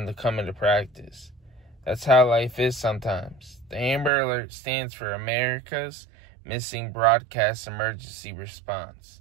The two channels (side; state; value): left; drops out; at 4.1 s